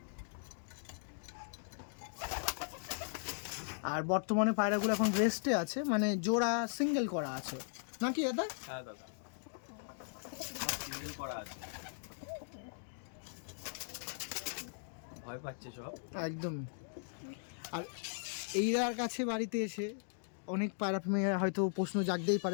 আর বর্তমানে পায়রাগুলো এখন রেস্টে আছে, মানে জোড়া সিঙ্গেল করা আছে নাকি দাদা? হ্যাঁ দাদা, সিঙ্গেল করা আছে। ভয় পাচ্ছে সব একদম। আর এইরার কাছে বাড়িতে এসে অনেক পায়রা প্রেমীরা হয়তো প্রশ্ন জাগতেই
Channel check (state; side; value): silent; right; digital silence